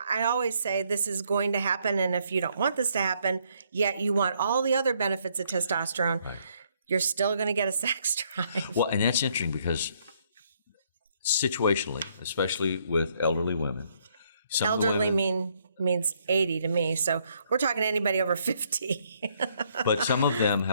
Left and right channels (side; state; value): both; inverted; correlation -0.70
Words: I always say this is going to happen, and if you don't want this to happen, yet you want all the other benefits of testosterone, you're still going to get a sex drive. Well, and that's interesting because situationally, especially with elderly women, elderly means 80 to me, so we're talking anybody over 50. But some of them